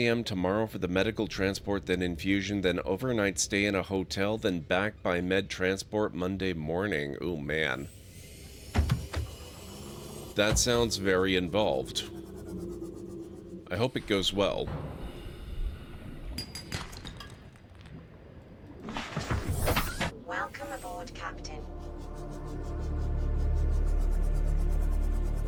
tomorrow for the medical transport, then infusion, then overnight stay in a hotel, then back by med transport Monday morning. Oh, man. That sounds very involved. I hope it goes well. Welcome aboard, Captain.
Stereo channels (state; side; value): identical; both; correlation 1.00